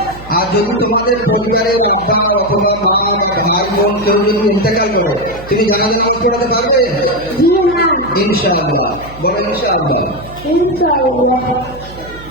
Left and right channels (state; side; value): noise; right; hum, 17 dB below the sound